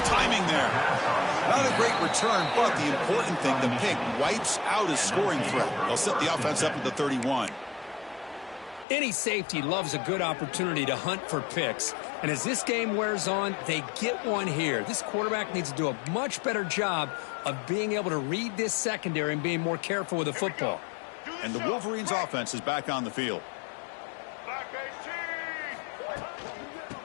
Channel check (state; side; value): drops out; right; at 8.8 s